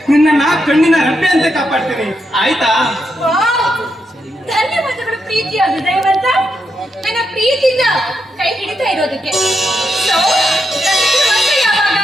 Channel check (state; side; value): normal; both; correlation 0.82